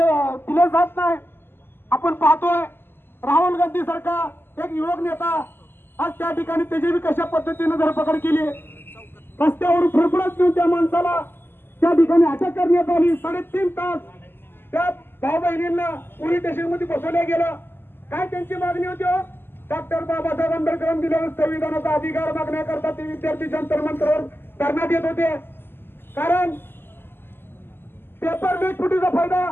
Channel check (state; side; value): late; right; 0.10 ms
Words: जात नाही. आपण पाहतोय राहुल गांधी सारखा एक युवक नेता आज त्या ठिकाणी त्याची बी कशा पद्धतीने धरपकड केली. रस्त्यावरून फडफडत घेऊन त्या माणसाला त्या ठिकाणी अटक करण्यात आली. 3.5 तास त्या भाऊ बहिणींना पोलीस स्टेशन मध्ये बसवल्या गेलं. काय त्यांची मागणी होती? डॉक्टर बाबासाहेब आंबेडकरांनी दिलेला संविधानाचा अधिकार मागण्याकरता ते विद्यार्थी जंतर मंतरवर धरण्यात येत होते. कारण पेपर लीक फुटीचा फायदा